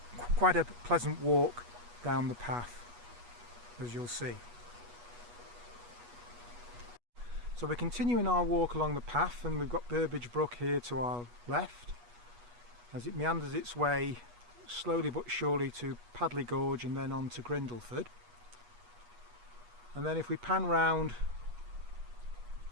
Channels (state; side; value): late; left; 8.3 ms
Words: quite a pleasant walk down the path, as you'll see. So we're continuing our walk along the path, and we've got Burbage Brook here to our left as it meanders its way slowly but surely to Padley Gorge and then on to Grindleford. And then if we pan round